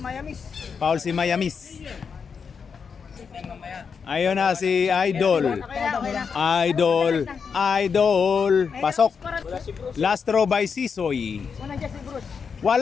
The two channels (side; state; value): right; quieter; 6.1 dB